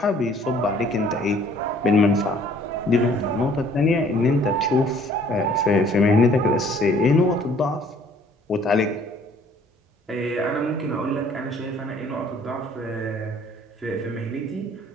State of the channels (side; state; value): both; normal; correlation 0.57